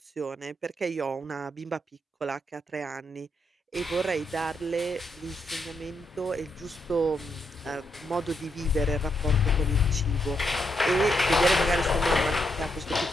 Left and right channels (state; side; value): normal; both; correlation 0.80